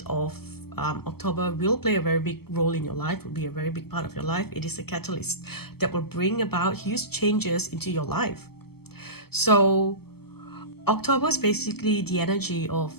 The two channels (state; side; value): late; right; 0.96 ms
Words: of October will play a very big role in your life, will be a very big part of your life. It is a catalyst that will bring about huge changes into your life. So October is basically the energy of